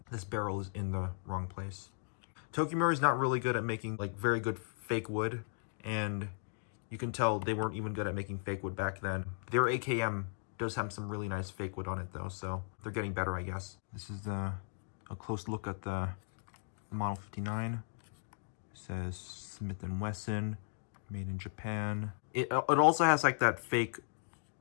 this barrel is in the wrong place. Tokyo Marui is not really good at making like very good fake wood, and you can tell they weren't even good at making fake wood back then. Their AKM does have some really nice fake wood on it though, so they're getting better, I guess. This is a close look at the Model 59. It says Smith & Wesson, made in Japan. It also has like that fake,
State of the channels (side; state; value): right; silent; digital silence